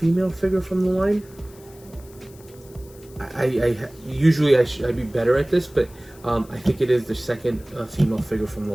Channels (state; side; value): noise; left; hiss, 24 dB below the sound